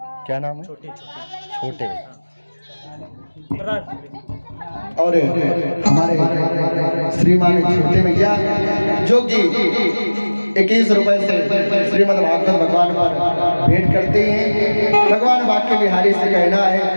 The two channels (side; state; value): both; inverted; correlation -1.00